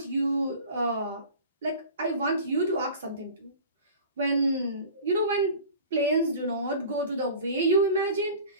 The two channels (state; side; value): inverted; both; correlation -0.40